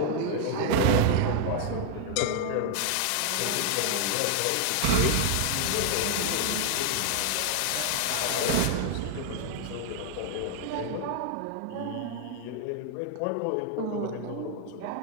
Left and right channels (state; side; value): different; both; correlation 0.00